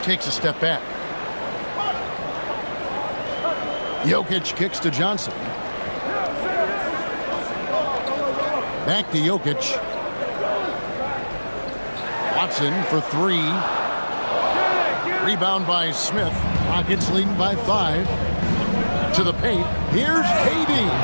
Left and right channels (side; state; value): both; inverted; correlation -1.00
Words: Takes a step back. Jokic kicks to Johnson. Back to Jokic. Watson for 3. Rebound by Smith. Rockets leading by 5. To the paint. Here's KD.